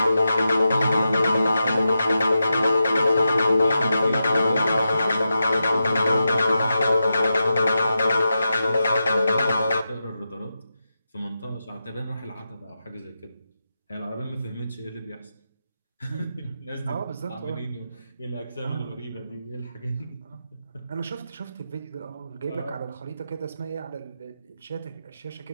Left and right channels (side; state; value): both; inverted; correlation -0.89